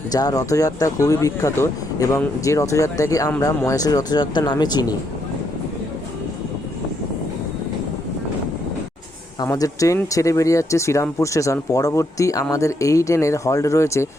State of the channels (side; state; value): both; normal; correlation 0.76